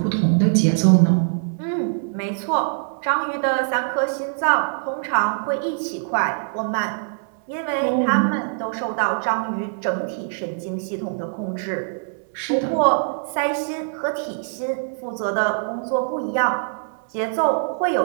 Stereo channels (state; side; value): silent; left; 63 dB below the other